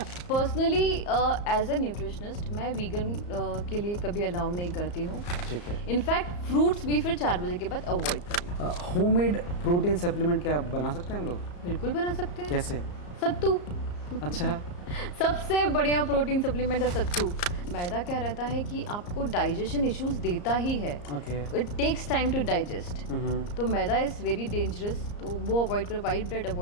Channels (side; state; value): right; late; 34 ms